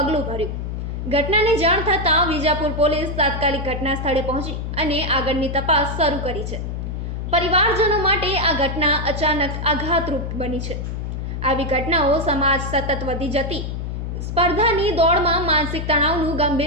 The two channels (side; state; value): left; noise; hum, 4 dB below the sound